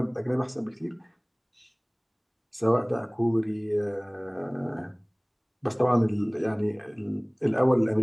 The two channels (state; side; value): identical; both; correlation 1.00